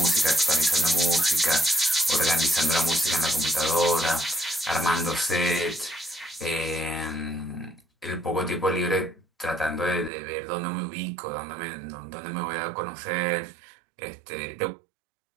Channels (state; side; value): drops out; left; at 10.1 s